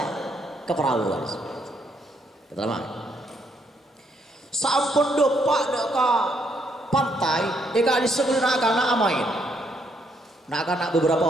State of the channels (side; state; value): both; normal; correlation 0.73